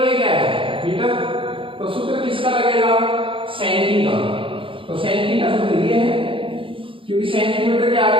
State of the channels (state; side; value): late; left; 0.25 ms